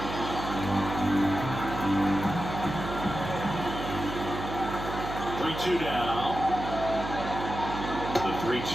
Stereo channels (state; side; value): noise; right; hum, 7 dB below the sound